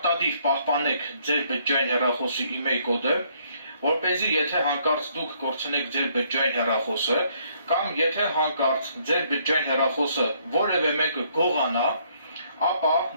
պահպանեք ձեր բջջային հեռախոսի email կոդը, որպեսզի եթե հանկարծ դուք կորցնեք ձեր բջջային հեռախոսը կամ եթե հանկարծ ձեր բջջային հեռախոսը որևէ մեկը գողանա, ապա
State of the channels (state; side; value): inverted; both; correlation -0.67